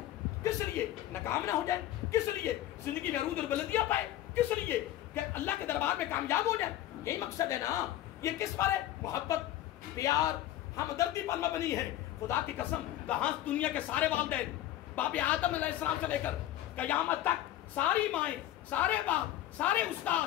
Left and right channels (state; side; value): quieter; right; 13.5 dB